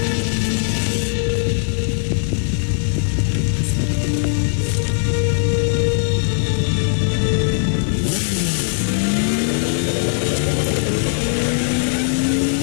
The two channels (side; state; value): right; silent; digital silence